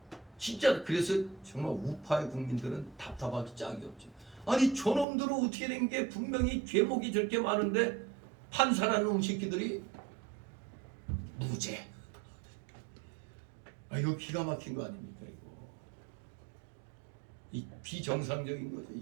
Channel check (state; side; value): drops out; left; at 5.1 s